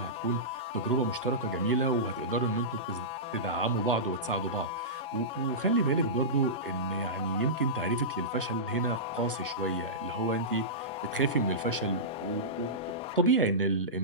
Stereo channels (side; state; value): both; normal; correlation -0.17